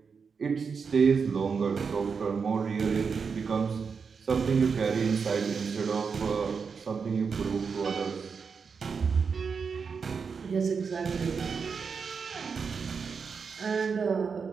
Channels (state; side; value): quieter; left; 5.7 dB